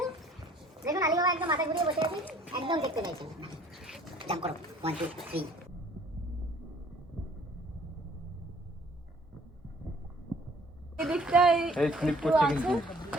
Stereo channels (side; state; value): both; normal; correlation 0.56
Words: দেখুন আলী বাবা একদম মাথা ঘুরিয়ে বসে আছে, একদম দেখতে পাইছেন। জাম্প করো 1 2 3। এদিকটাই এই স্লিপ করছে কিন্তু।